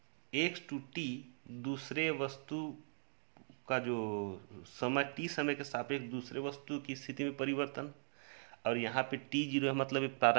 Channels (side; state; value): left; silent; digital silence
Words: X two t दूसरे वस्तु का जो समय टी समय के सापेक्ष दूसरे वस्तु की स्थिति में परिवर्तन, और यहाँ पे टी जीरो है मतलब